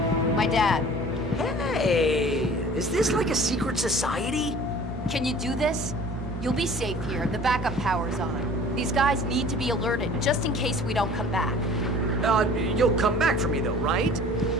My dad. Hey, is this like a secret society? Can you do this? You'll be safe here. The backup power's on. These guys need to be alerted, just in case we don't come back. You'll come back for me though, right?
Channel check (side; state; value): both; normal; correlation 0.47